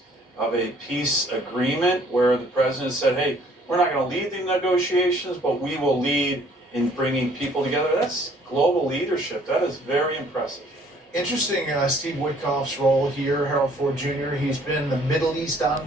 of a peace agreement where the president said, hey, we're not going to lead the negotiations, but we will lead in bringing people together. That's global leadership. That is very impressive. Interesting, Steve Witkoff's role here, Harold Ford Jr. He's been the Middle East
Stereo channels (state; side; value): normal; both; correlation 0.59